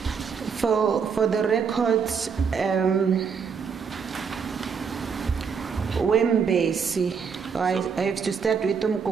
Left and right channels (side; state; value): left; quieter; 6.2 dB